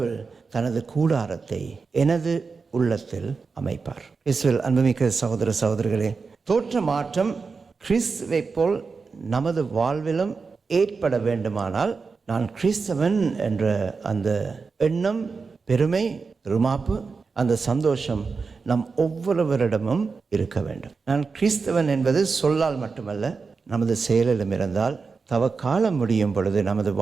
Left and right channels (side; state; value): left; quieter; 4.7 dB